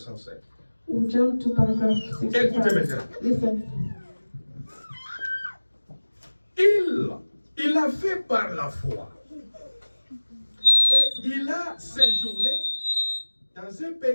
We'll jump to paragraph Écoutez 65. maintenant. Listen. Il a fait par la foi. Et il a séjourné dans un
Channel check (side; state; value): both; inverted; correlation -1.00